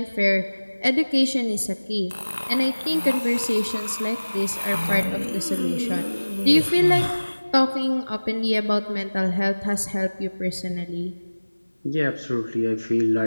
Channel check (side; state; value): both; inverted; correlation -1.00